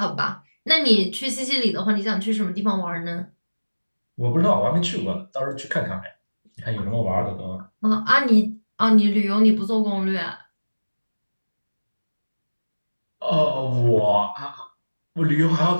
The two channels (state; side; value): inverted; both; correlation -1.00